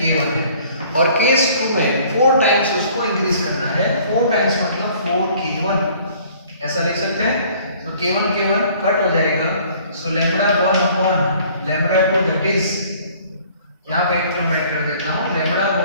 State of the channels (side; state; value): both; inverted; correlation -0.55